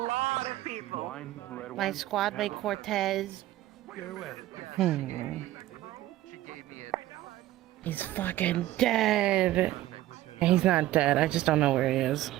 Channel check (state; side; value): quieter; left; 15.2 dB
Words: of people. Wine, red My wine. squad mate Cortez. He's fucking dead. He's not dead. I just don't know where he is.